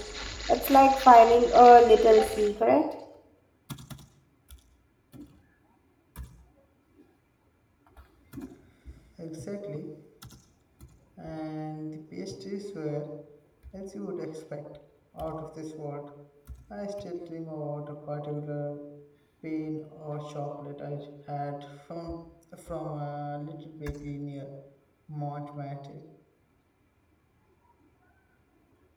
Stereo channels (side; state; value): both; identical; correlation 1.00